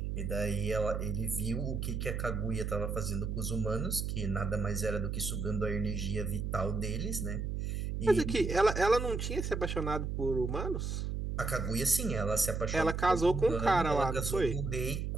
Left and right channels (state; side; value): noise; right; hum, 2 dB below the sound